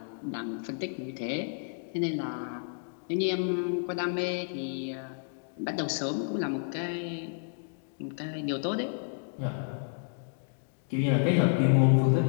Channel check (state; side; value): silent; right; digital silence